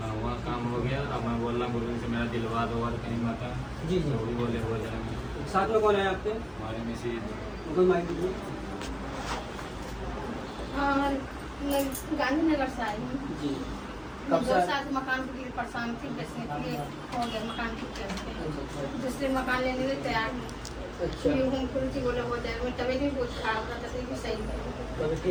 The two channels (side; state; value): both; identical; correlation 1.00